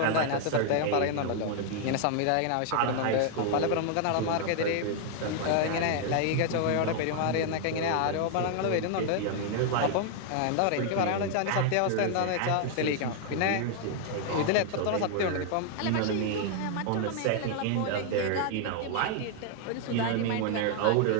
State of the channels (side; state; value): both; different; correlation 0.00